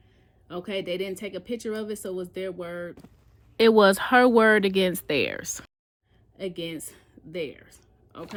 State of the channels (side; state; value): both; identical; correlation 1.00